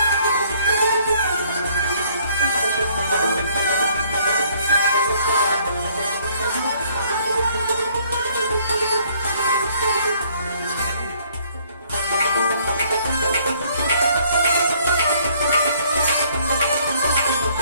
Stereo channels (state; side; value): inverted; both; correlation -0.63